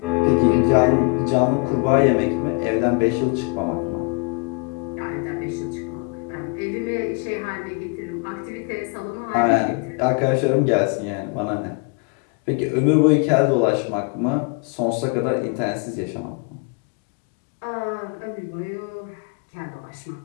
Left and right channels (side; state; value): right; quieter; 31.9 dB